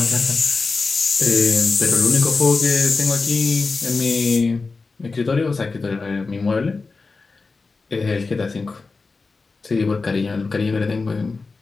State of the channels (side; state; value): right; quieter; 4.1 dB